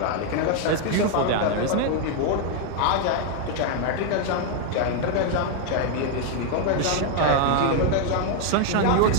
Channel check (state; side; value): different; both; correlation 0.00